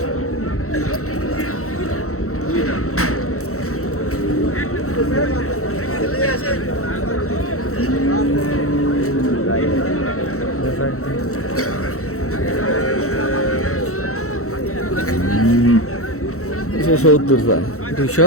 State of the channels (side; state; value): right; late; 0.64 ms